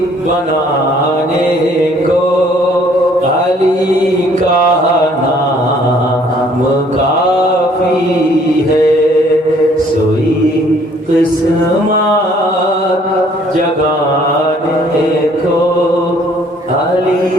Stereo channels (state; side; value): normal; both; correlation 0.60